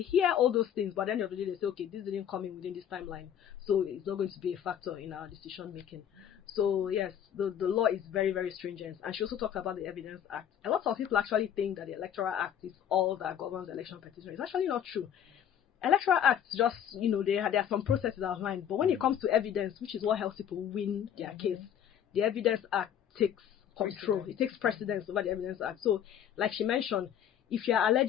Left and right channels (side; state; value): right; quieter; 9.4 dB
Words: hear all those things, but at the end of the day, they say, okay, this didn't come in within this timeline, so it's not going to be a factor in our decision making. So yes, the law is very, very stringent. And she also talked about the Evidence Act. A lot of people actually think that the Electoral Act is all that governs election petition. It's actually not true. Electoral Acts just, there are some processes outlined, but when it comes to evidence, which is what helps people win their case, the Evidence Act takes control. It takes precedence over the Evidence Act. So, like she mentioned, if you are